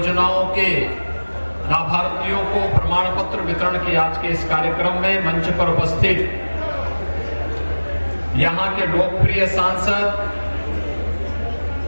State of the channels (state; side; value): inverted; both; correlation -1.00